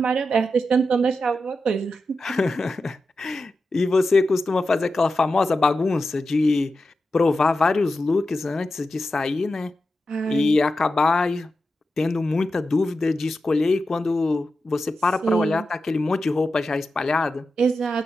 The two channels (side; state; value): both; normal; correlation 0.90